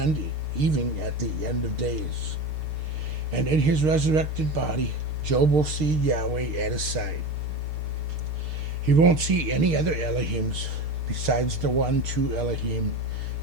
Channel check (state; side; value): late; left; 6.6 ms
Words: even at the end of days. And in his resurrected body, Job will see Yahweh at his side. He won't see any other Elohims besides the one true Elohim